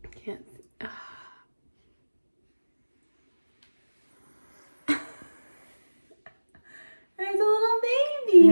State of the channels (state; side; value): inverted; both; correlation -1.00